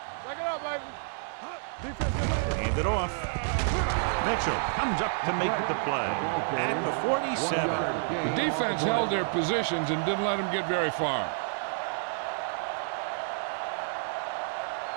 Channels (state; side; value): silent; left; digital silence